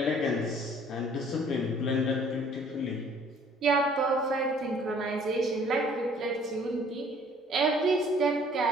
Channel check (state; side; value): normal; both; correlation 0.56